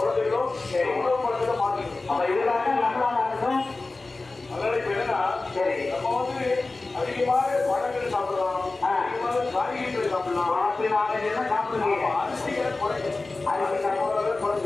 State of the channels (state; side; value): quieter; right; 3.4 dB